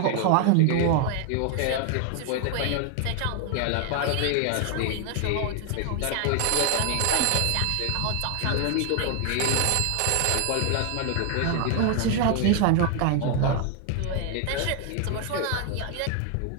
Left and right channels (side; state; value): both; different; correlation 0.01